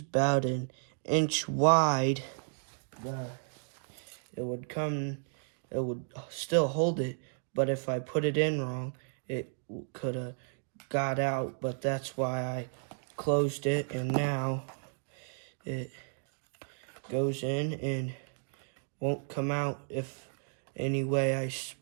an inch wide, it would still hold it, but if I put it in wrong, it could have got out. But that's why I closed it, and now it goes in and won't come out if any way I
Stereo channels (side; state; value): left; silent; digital silence